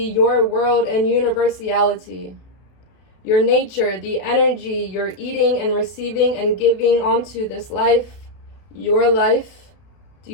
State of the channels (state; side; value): late; right; 32 ms